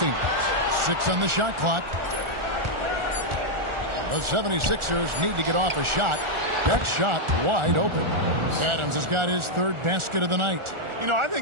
6 on the shot clock. The 76ers need to get off a shot. That shot wide open. Adams has got his 3rd basket of the night. You know, I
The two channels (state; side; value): late; left; 1.4 ms